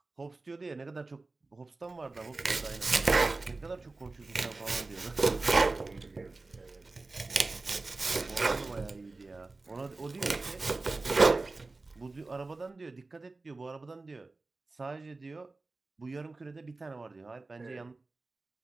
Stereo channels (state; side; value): quieter; left; 3.5 dB